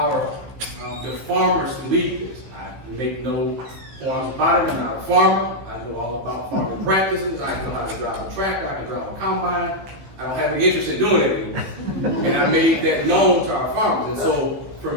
the farmers to lead this. I make no qualms about it. I'm not a farmer. I know all about farming practices. I know how to drive a tractor. I can drive a combine. I don't have any interest in doing it anymore. And I made that known to our farmers. And so for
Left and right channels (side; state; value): left; late; 15 ms